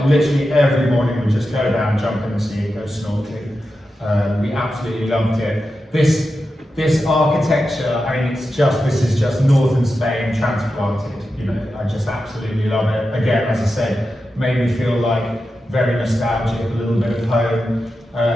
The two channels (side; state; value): both; normal; correlation 0.90